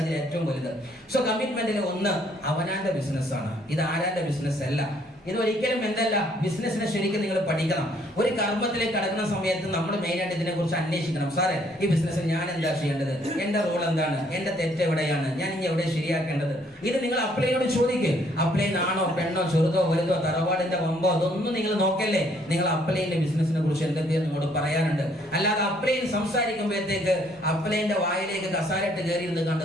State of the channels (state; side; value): normal; both; correlation 0.65